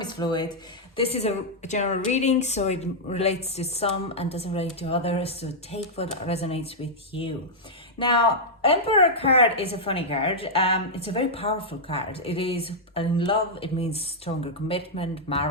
is fluid. This is a general reading, so it relates to some and doesn't relate to others. So take what resonates with you. Now, Emperor card is a funny card. It's a very powerful card. It is in love. It means stronger commitment,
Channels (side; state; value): both; normal; correlation -0.06